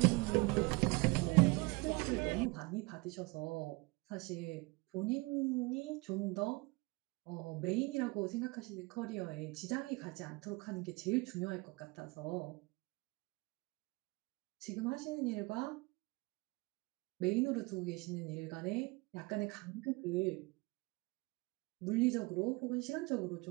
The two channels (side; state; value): left; quieter; 25.5 dB